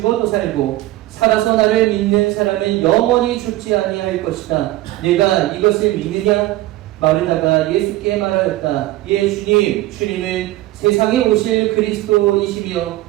살고 살아서 나를 믿는 사람은 영원히 죽지 아니할 것이다. 내가 이것을 믿느냐? 마르다가 예수께 말하였다. 예, 주님은 세상에 오실 그리스도이시며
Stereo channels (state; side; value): quieter; left; 16.7 dB